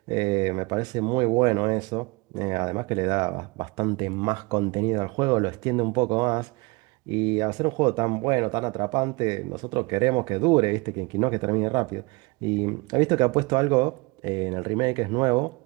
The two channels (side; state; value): left; quieter; 26.1 dB